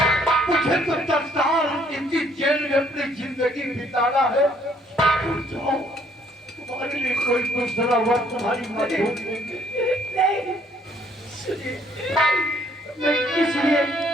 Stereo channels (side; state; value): both; normal; correlation 0.64